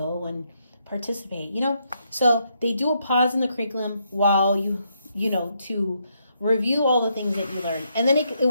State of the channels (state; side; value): inverted; both; correlation -0.77